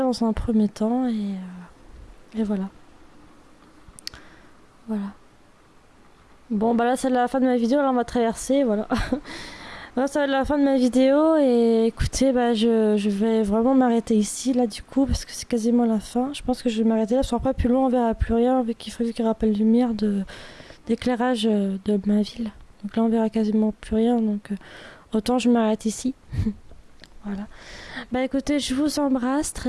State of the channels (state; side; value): identical; both; correlation 1.00